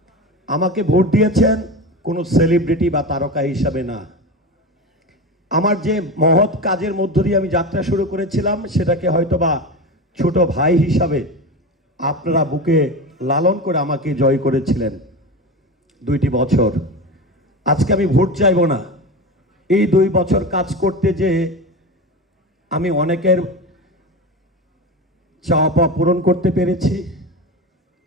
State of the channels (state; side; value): normal; both; correlation 0.24